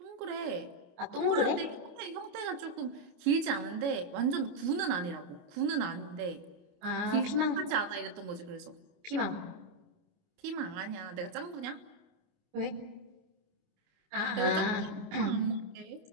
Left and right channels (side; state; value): left; late; 28 ms